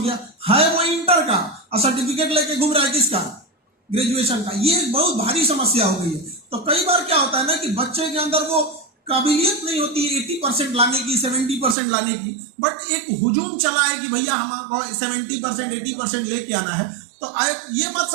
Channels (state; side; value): drops out; left; at 11.8 s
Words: है, वो इंटर का और सर्टिफिकेट लेके घूम रहा है किसका, ग्रेजुएशन का। ये बहुत भारी समस्या हो गई है। तो कई बार क्या होता है ना कि बच्चे के अंदर वो काबिलियत नहीं होती 80% लाने की, 70% लाने की, बट एक हुजूम चला है कि भैया हमको 70% 80% लेके आना है। तो ये मत